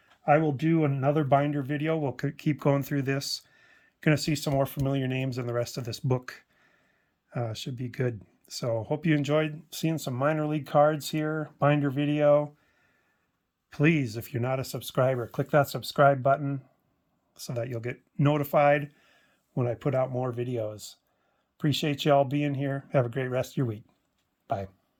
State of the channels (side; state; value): both; identical; correlation 1.00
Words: I will do another binder video. We'll keep going through this. Going to see some more familiar names in the rest of this book. Should be good. So hope you enjoyed seeing some minor league cards here, binder video. Please, if you're not a subscriber, click that subscribe button so that you'll get notified when I put out more videos. Appreciate you all being here. Have a great rest of your week. Bye.